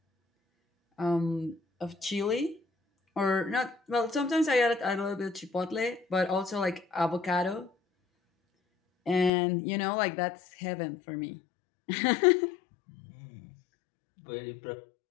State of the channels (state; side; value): drops out; right; at 9.3 s